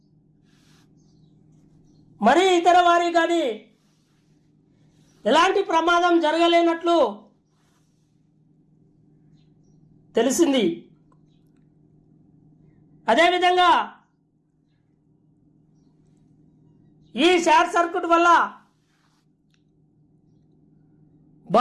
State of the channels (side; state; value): both; identical; correlation 1.00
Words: మరి ఇతర వారి కానీ ఎలాంటి ప్రమాదం జరగలేనట్లు తెలిసింది. అదేవిధంగా ఈ షార్ట్ సర్క్యూట్ వల్ల